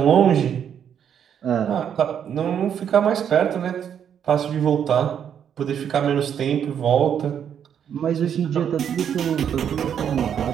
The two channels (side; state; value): left; quieter; 8.6 dB